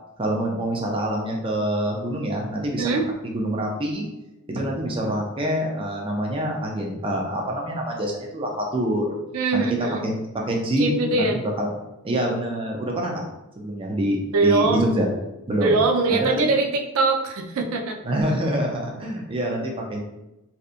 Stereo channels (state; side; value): normal; both; correlation 0.30